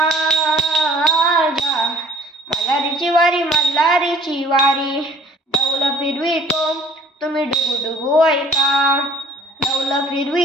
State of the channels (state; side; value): normal; both; correlation 0.53